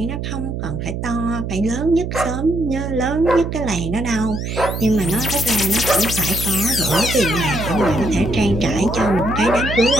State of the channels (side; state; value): right; noise; hum, 5 dB below the sound